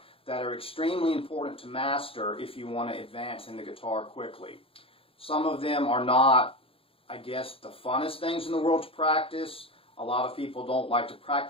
that are extremely important to master if you want to advance in the guitar quickly. Some of them are not, I guess, the funnest things in the world to practice. A lot of people don't like to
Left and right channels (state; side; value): late; right; 0.27 ms